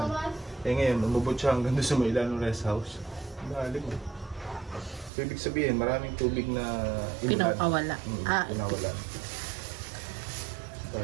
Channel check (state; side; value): drops out; left; at 5.1 s